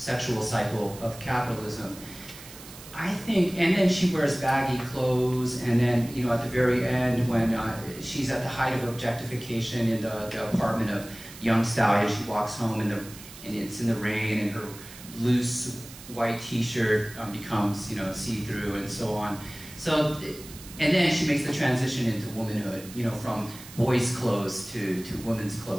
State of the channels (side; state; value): right; noise; hiss, 16 dB below the sound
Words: cycle of capitalism. I think, and then she wears baggy clothes, and then, at the very end when she's at the height of objectification in the apartment of young stallion, she walks home and it's in the rain, and her loose white t-shirt becomes, see-through and so on. So, and then she makes the transition into womanhood, from boys' clothes to women's